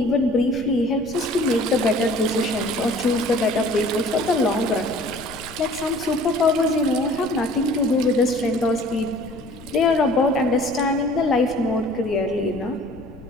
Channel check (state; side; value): noise; left; rumble, 18 dB below the sound